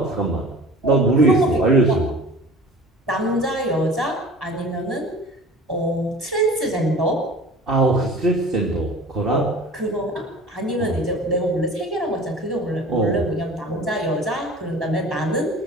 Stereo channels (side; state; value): both; normal; correlation 0.41